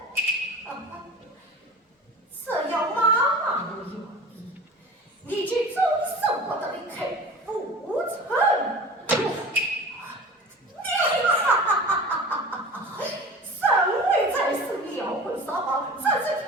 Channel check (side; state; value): both; normal; correlation 0.38